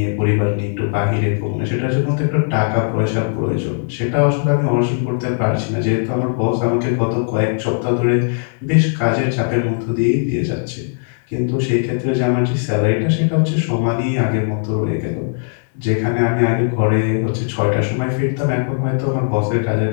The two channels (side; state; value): right; silent; digital silence